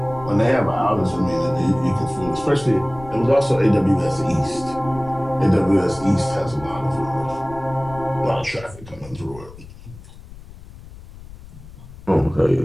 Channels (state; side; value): noise; left; rumble, 17 dB below the sound